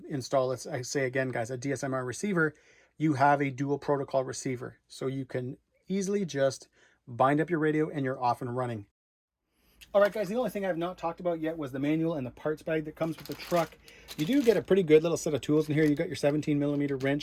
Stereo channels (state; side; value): identical; both; correlation 1.00